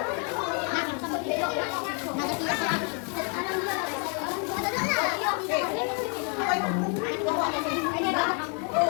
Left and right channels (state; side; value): quieter; right; 38.2 dB